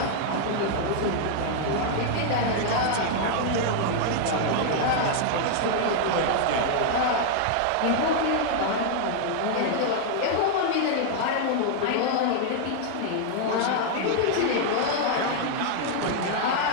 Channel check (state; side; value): different; both; correlation 0.00